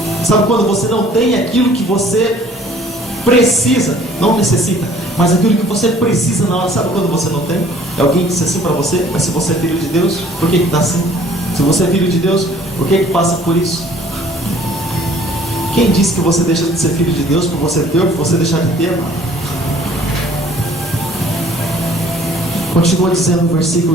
Sabe quando você não tem aquilo que você precisa, não necessita, mas aquilo que você precisa na hora? Sabe quando você não tem? É alguém que disse assim para você: mas se você é filho de Deus, por que está assim? Se você é filho de Deus, por que passa por isso? Quem disse que você deixa de ser filho de Deus por você ter ou por você deixar de ter, mano? Continua dizendo no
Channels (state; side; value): normal; both; correlation 0.55